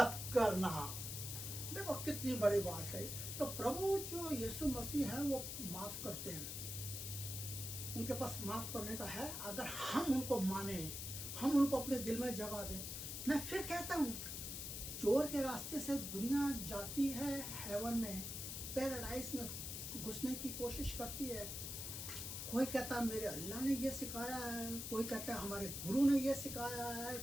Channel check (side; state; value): left; noise; hiss, 5 dB below the sound